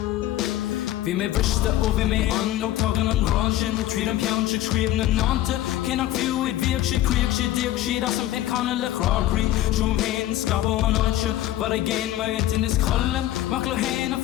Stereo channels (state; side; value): quieter; right; 14.1 dB